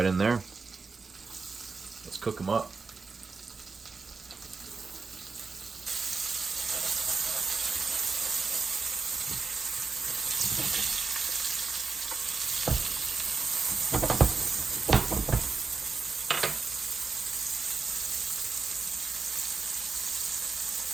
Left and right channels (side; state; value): left; quieter; 4.5 dB